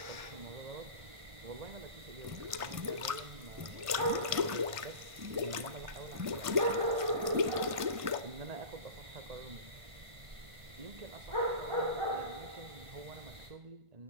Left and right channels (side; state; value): left; late; 1.5 ms